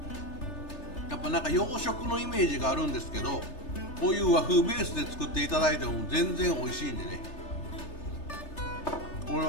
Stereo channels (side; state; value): right; late; 3.3 ms